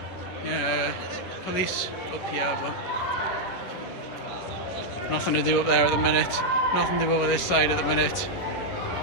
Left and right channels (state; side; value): late; right; 11 ms